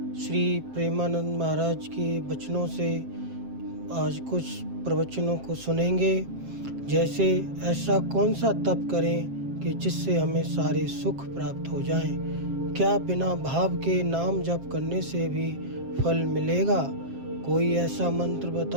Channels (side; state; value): left; late; 7.5 ms